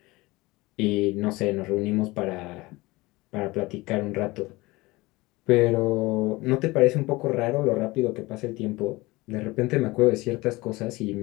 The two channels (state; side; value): quieter; right; 21.6 dB